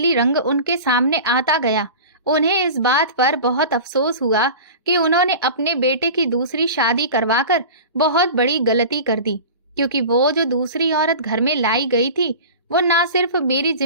रंग उनके सामने आता गया, उन्हें इस बात पर बहुत अफसोस हुआ कि उन्होंने अपने बेटे की दूसरी शादी करवाकर बहुत बड़ी गलती कर दी, क्योंकि वो जो दूसरी औरत घर में लाई गई थी, वो ना सिर्फ मेरी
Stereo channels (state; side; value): inverted; both; correlation -0.34